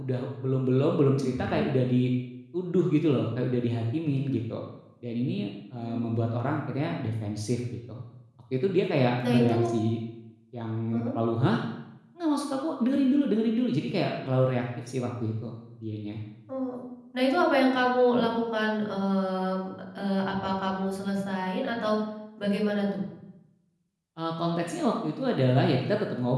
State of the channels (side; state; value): both; identical; correlation 1.00